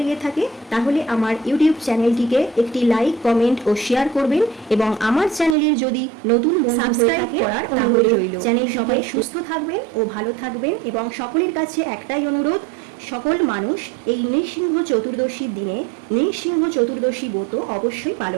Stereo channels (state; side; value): drops out; left; at 5.6 s